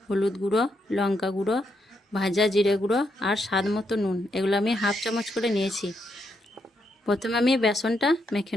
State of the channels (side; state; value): both; normal; correlation 0.79